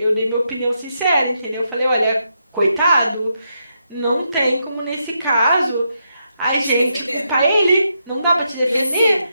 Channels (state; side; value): inverted; both; correlation -0.82